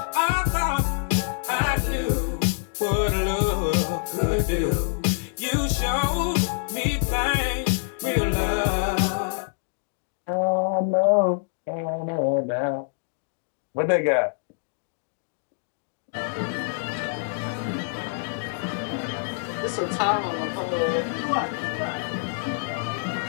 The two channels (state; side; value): silent; right; digital silence